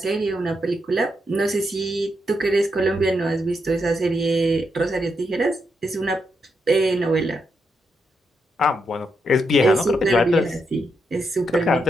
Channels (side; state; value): both; normal; correlation 0.82